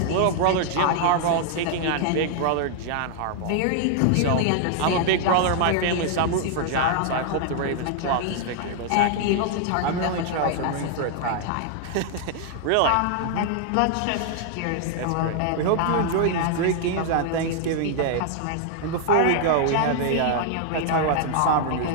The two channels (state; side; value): different; both; correlation 0.00